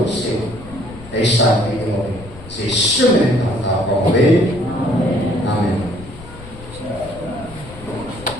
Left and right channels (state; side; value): noise; left; rumble, 17 dB below the sound